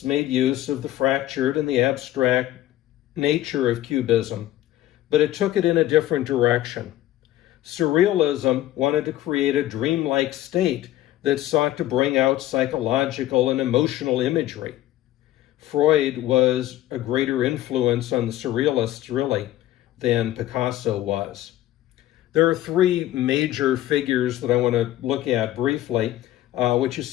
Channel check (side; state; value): right; quieter; 14.2 dB